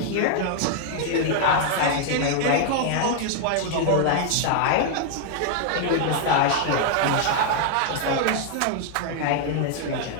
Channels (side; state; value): both; different; correlation 0.00